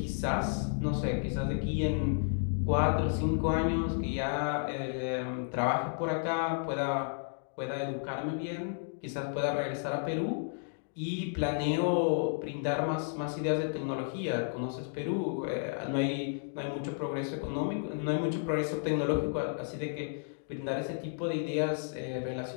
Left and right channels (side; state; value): right; silent; digital silence